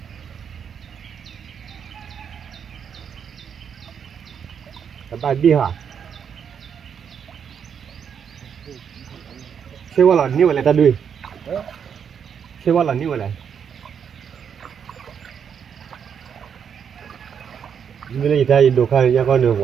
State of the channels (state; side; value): quieter; left; 7.5 dB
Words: bài đi hả xe qua là như vậy là ta đi xe qua là như vậy này như này ta đồ khai ra con đường